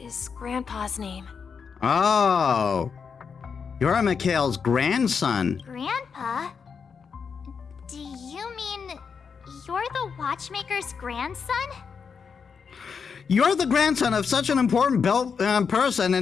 Grandpa's name. Oh. You're Mikhail's grandson. Grandpa? Do you mean you're the Watchmaker's grandson? You're the grandson of such an important person,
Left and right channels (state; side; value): quieter; right; 6.0 dB